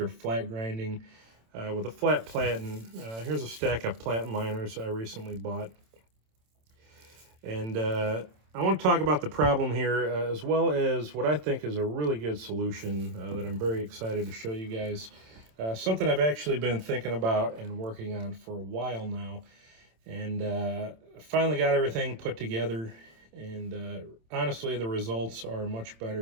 flat grinding with a flat platen. Here's a stack of platen liners I recently bought. And I want to talk about the problem here as well as what I think is a really good solution that I'm very excited to show you guys. Something I've actually been thinking about and working on for a while now. And finally got everything put together. And honestly, the results are much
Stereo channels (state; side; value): late; left; 27 ms